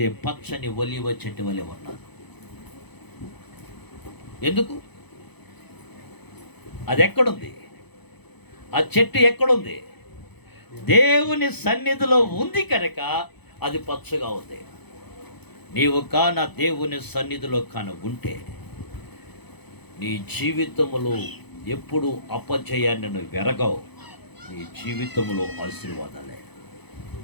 పచ్చని ఒలీవ చెట్టు వలె ఉన్నాను. ఎందుకు? అది ఎక్కడుంది? ఆ చెట్టు ఎక్కడుంది? దేవుని సన్నిధిలో ఉంది కనుక అది పచ్చగా ఉంది. నీవు కాన దేవుని సన్నిధిలో ఉంటే నీ జీవితంలో ఎప్పుడు అపజయాన్ని నువ్వు వెరగవు. నీ జీవితంలో ఆశీర్వాదాలే.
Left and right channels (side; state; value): right; late; 0.98 ms